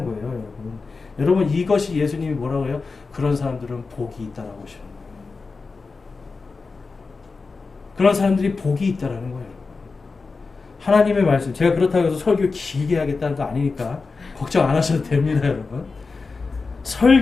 거예요. 여러분. 여러분, 이것이 예수님이 뭐라고 해요? 그런 사람들은 복이 있다라고 하시는 거예요. 그런 사람들이 복이 있다라는 거예요. 하나님의 말씀, 제가 그렇다고 해서 설교 길게 하겠다는 거 아니니까 걱정 안 하셔도 됩니다, 여러분.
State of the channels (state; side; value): quieter; right; 4.3 dB